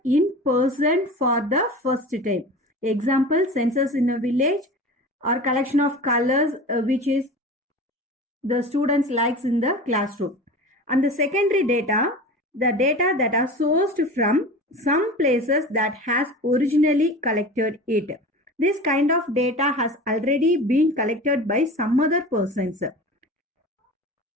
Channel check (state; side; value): normal; both; correlation 0.34